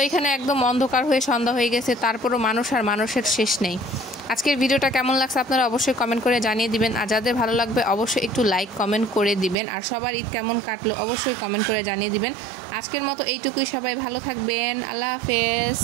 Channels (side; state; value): left; drops out; at 9.6 s